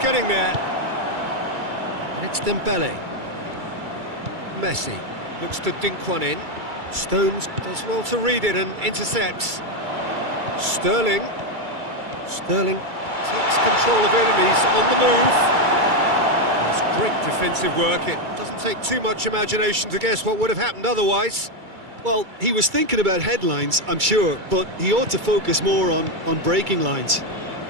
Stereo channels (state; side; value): late; left; 2.3 ms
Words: there? And it's Dembele. Messi looks to dink one in. Stones does well to read it and intercepts. Sterling takes control of it and he's on the move. That's great defensive work. It doesn't take too much imagination to guess what would have happened otherwise. Well, he was thinking about headlines, I'm sure, but he ought to focus more on breaking lines.